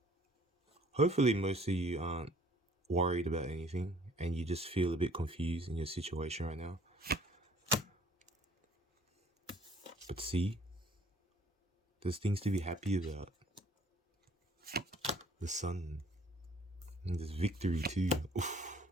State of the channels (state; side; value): normal; both; correlation 0.57